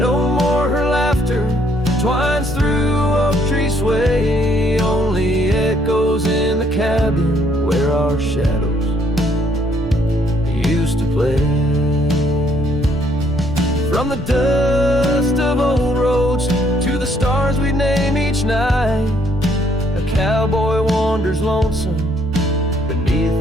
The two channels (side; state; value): both; normal; correlation 0.67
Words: more her laughter twines through cabin where our shadows used to play. From the dust of old roads to the stars we'd name each night, a cowboy wanders lonesome beneath